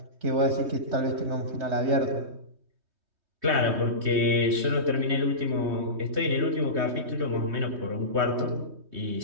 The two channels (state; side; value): late; left; 3.2 ms